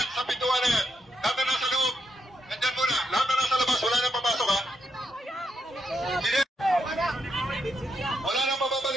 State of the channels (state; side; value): normal; both; correlation 0.82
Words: sa pintuan na yan. Lahat na nasa loob. Nandyan muna. Lahat na nasa labas. Wala nang papasok ha. CDF! Wala nang